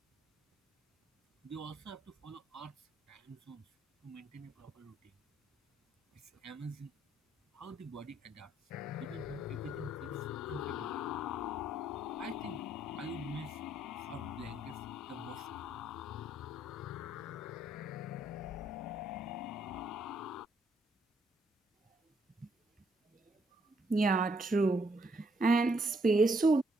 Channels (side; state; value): both; normal; correlation 0.71